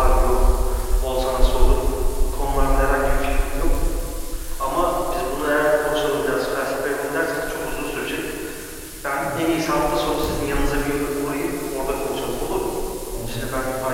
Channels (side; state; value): both; identical; correlation 1.00